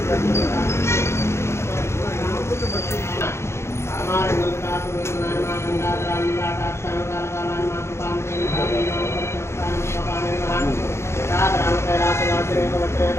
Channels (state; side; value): late; right; 0.13 ms